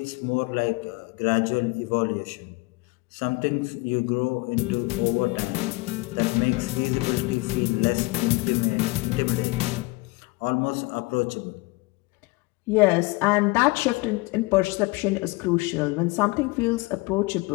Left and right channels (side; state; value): right; quieter; 24.6 dB